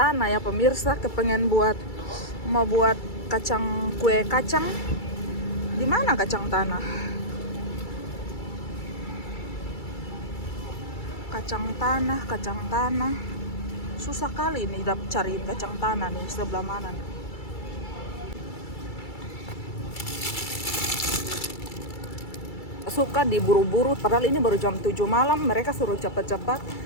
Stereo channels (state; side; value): late; right; 2.3 ms